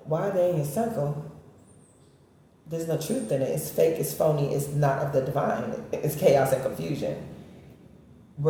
why are they in your circle? There's no truth in it. It's fake, it's phony, it's not of the divine. It's chaos and confusion.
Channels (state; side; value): identical; both; correlation 1.00